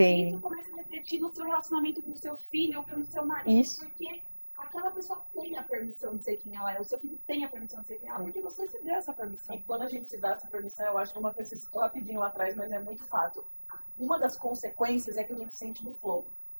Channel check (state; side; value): inverted; both; correlation -1.00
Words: Isso começa a refletir no seu relacionamento com o seu filho ou com o seu marido, Isso. porque aquela pessoa tem a permissão de ser quem ela é, o seu filho tem a permissão de ser quem ela é, porque você se deu essa permissão. E quando a gente se dá essa permissão, eu acho que uma coisa que rapidinho lá atrás, mas é muito fato. Uma das consequências é que a gente sente no flow. O